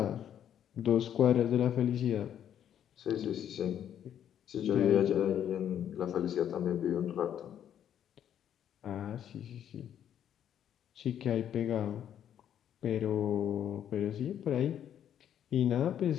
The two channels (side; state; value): right; quieter; 9.9 dB